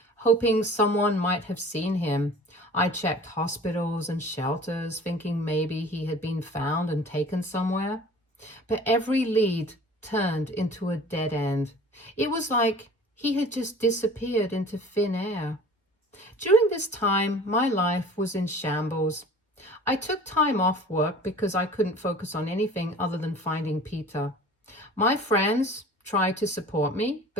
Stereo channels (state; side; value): normal; both; correlation 0.45